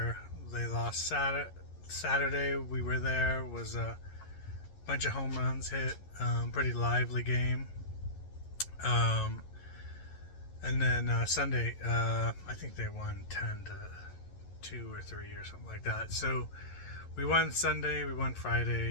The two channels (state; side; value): late; right; 11 ms